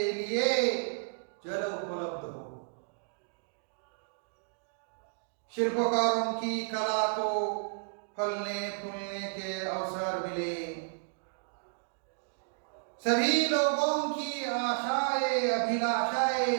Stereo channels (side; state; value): left; silent; digital silence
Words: लिए जल उपलब्ध हो। शिल्पकारों की कला को फलने फूलने के अवसर मिले। सभी लोगों की आशाएं अभिलाषाएं